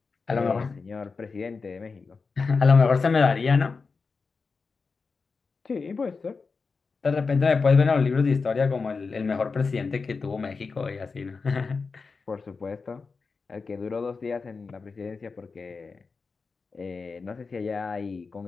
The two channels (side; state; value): right; quieter; 4.6 dB